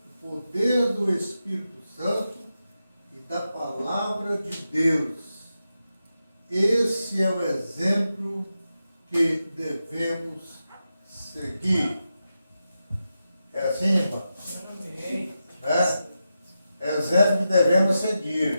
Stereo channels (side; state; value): both; inverted; correlation -0.89